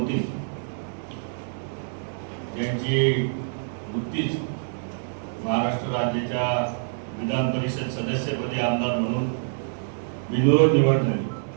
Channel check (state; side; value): silent; left; digital silence